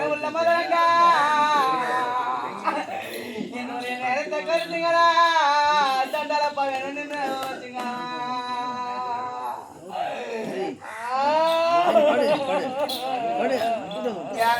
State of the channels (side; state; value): both; identical; correlation 1.00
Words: உள்ள மதங்க என்னுடைய நேரத்தை கருத்துங்களா தண்டால பழம் வச்சுங்க